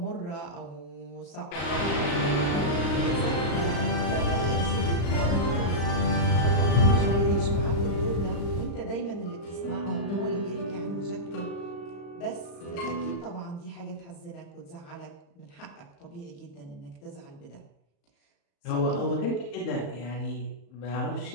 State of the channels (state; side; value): late; right; 35 ms